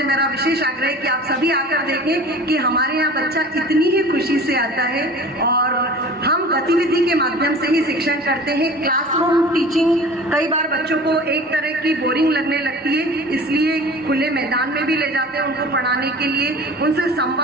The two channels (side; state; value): both; normal; correlation 0.41